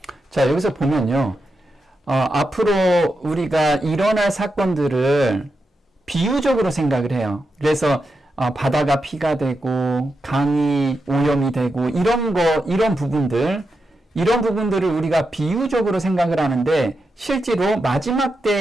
자, 여기서 보면요. 앞으로 우리가 일어날 사건들을 비유적으로 생각을 해요. 그래서 바다가 피가 되고 강이 오염이 되고 이런 부분들을 우리가 비유적으로 생각을 하는데 실제로 마지막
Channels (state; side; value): normal; both; correlation 0.87